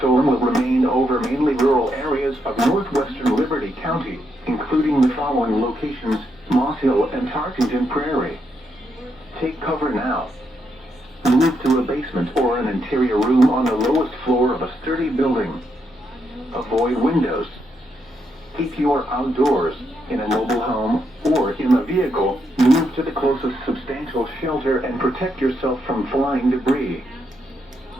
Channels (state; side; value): normal; both; correlation 0.80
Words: will remain over mainly rural areas of northwestern Liberty County, including the following locations: Moss Hill and Tarkington Prairie. Take cover now. Move to a basement or an interior room on the lowest floor of a sturdy building. Avoid windows. If you are outdoors, in a mobile home, or in a vehicle, move to the closest substantial shelter and protect yourself from flying debris.